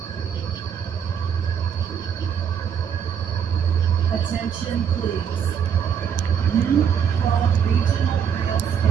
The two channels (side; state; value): left; quieter; 7.9 dB